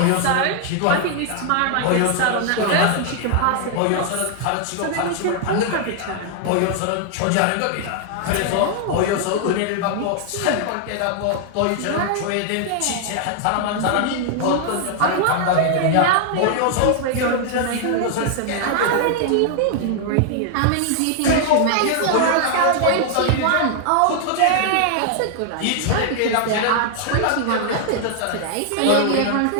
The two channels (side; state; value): both; different; correlation 0.00